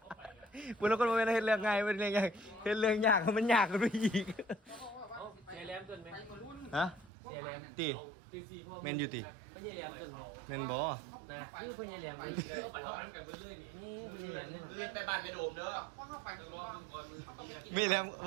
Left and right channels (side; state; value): left; drops out; at 7.1 s